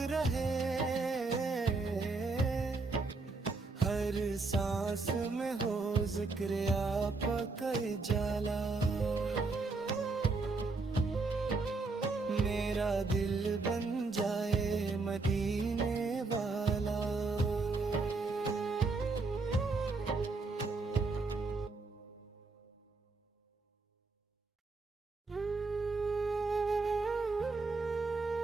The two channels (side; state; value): left; quieter; 3.8 dB